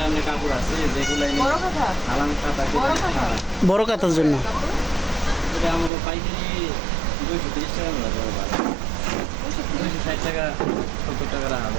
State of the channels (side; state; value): left; drops out; at 5.9 s